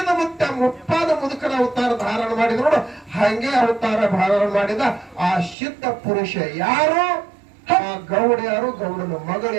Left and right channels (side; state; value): left; drops out; at 5.6 s